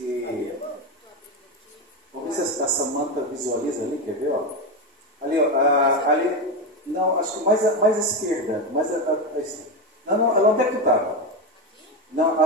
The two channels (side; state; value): both; normal; correlation 0.13